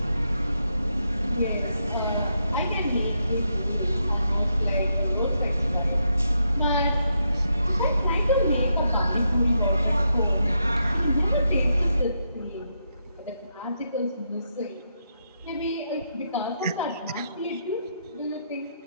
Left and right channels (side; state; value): both; inverted; correlation -0.80